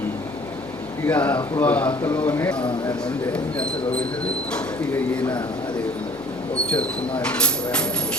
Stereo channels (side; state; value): left; noise; hum, 21 dB below the sound